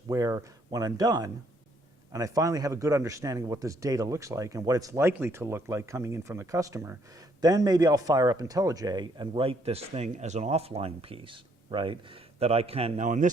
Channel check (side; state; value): both; normal; correlation 0.68